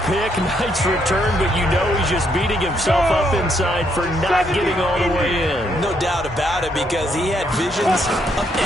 pick, nice return, but you know he's just beating himself up inside for not getting all the way in. No doubt about it, because he had visions of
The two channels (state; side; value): normal; both; correlation 0.74